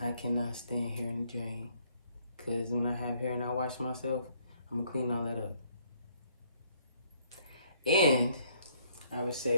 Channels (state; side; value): inverted; both; correlation -0.66